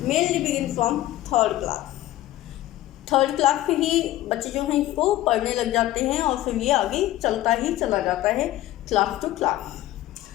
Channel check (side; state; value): right; quieter; 15.1 dB